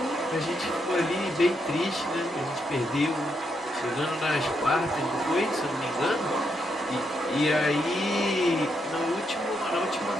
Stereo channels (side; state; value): both; normal; correlation 0.80